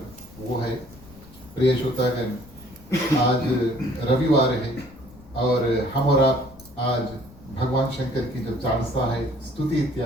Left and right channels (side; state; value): left; noise; rumble, 22 dB below the sound